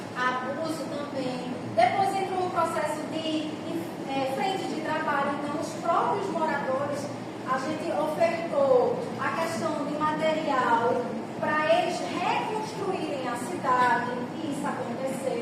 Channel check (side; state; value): both; identical; correlation 1.00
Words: abuso também. Depois entrou um processo de frente de trabalho, então os próprios moradores, a gente ofertou a questão de material para eles reconstruírem a cidade, e isso